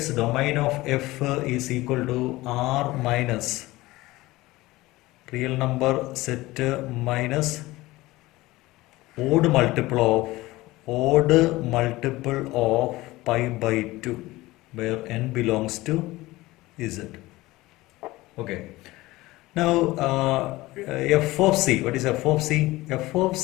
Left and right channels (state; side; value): quieter; right; 19.1 dB